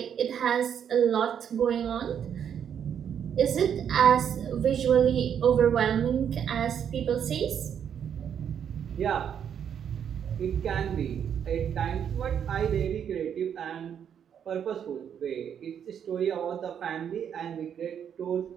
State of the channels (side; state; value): left; quieter; 8.5 dB